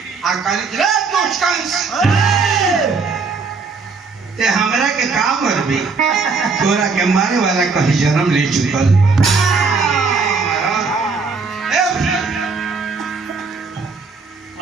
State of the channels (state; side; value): quieter; left; 4.5 dB